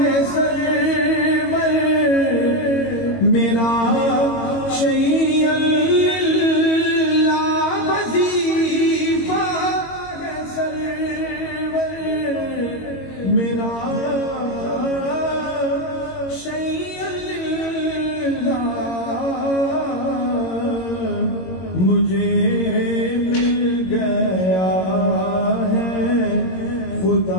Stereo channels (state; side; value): late; right; 22 ms